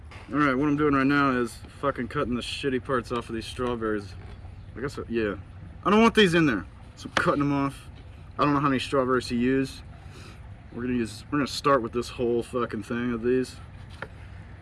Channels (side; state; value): both; identical; correlation 1.00